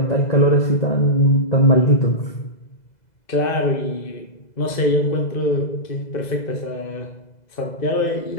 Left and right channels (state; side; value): late; right; 2.0 ms